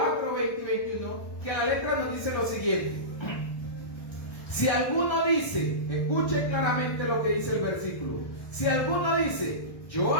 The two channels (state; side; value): late; right; 1.2 ms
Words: y 21, que a la letra nos dice lo siguiente. Si alguno dice, escuche claramente lo que dice el versículo. Si alguno dice, yo